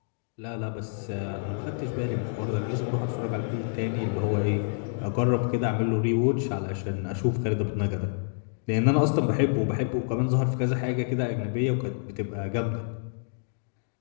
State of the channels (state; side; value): silent; right; digital silence